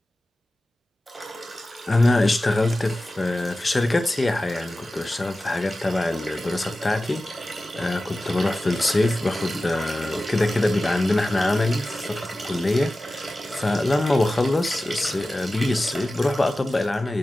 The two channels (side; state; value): both; normal; correlation 0.95